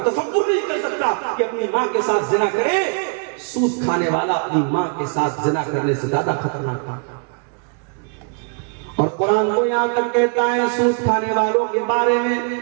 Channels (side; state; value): left; quieter; 37.8 dB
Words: تصور نہیں کر سکتا کہ اپنی ماں کے ساتھ زنا کرے۔ سود کھانے والا اپنی ماں کے ساتھ زنا کرنے سے زیادہ خطرناک ہے۔ اور قرآن تو یہاں تک کہتا ہے سود کھانے والوں کے بارے میں